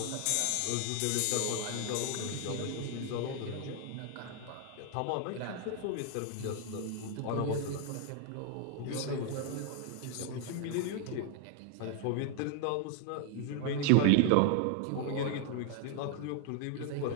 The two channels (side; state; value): both; different; correlation 0.00